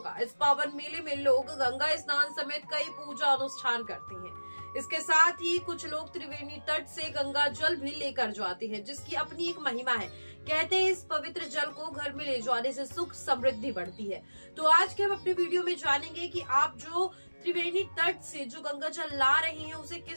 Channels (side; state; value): both; inverted; correlation -1.00